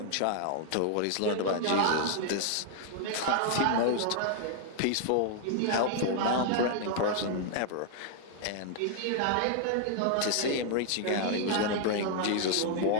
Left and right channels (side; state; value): both; different; correlation -0.01